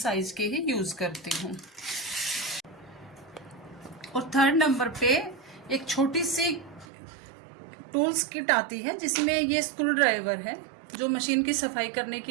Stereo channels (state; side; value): drops out; left; at 6.9 s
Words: के ही यूज करती हूँ। और 3rd नंबर पे एक छोटी सी टूल्स किट आती है, जिसमें ये स्क्रू ड्राइवर है जो मशीन की सफाई करने